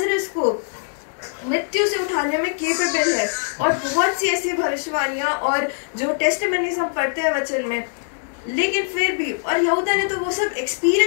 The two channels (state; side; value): silent; right; digital silence